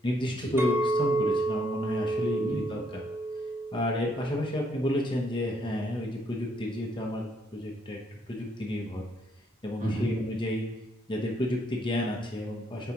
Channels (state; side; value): normal; both; correlation 0.71